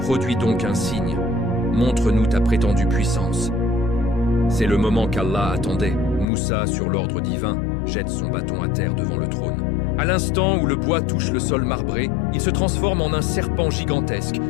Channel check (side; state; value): right; drops out; at 6.2 s